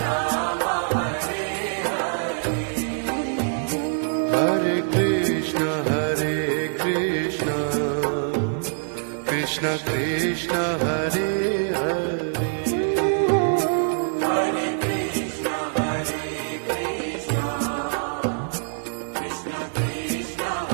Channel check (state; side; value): silent; left; digital silence